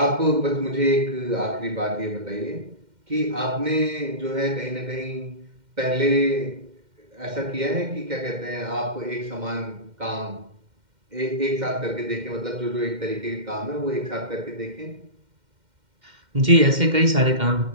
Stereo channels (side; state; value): left; late; 2.1 ms